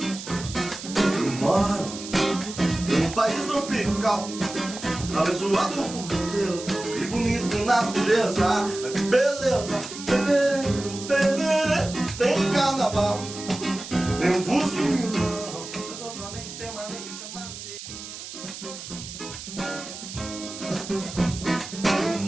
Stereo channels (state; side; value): noise; right; hiss, 11 dB below the sound